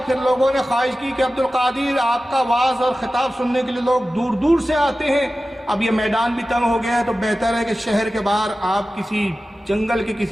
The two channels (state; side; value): normal; both; correlation 0.95